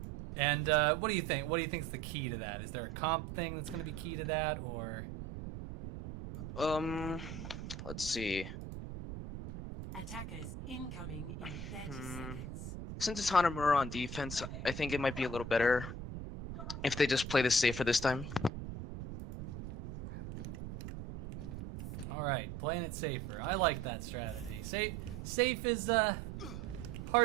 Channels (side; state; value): right; noise; rumble, 8 dB below the sound